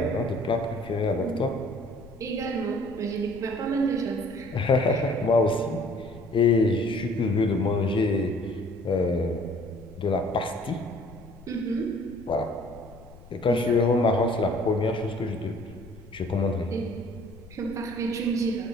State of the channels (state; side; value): noise; left; rumble, 20 dB below the sound